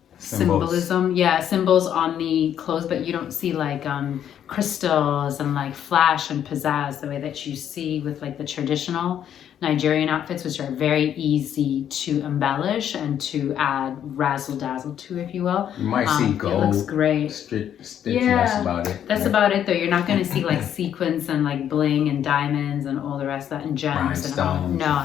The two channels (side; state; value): right; quieter; 9.8 dB